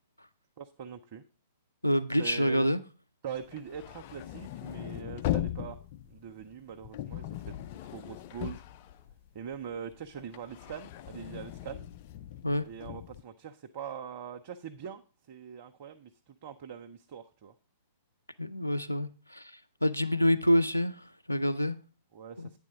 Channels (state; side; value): inverted; both; correlation -0.82